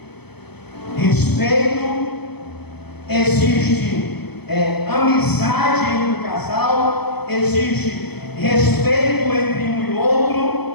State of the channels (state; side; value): late; right; 0.98 ms